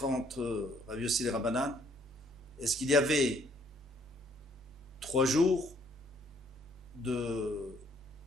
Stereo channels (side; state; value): both; normal; correlation 0.64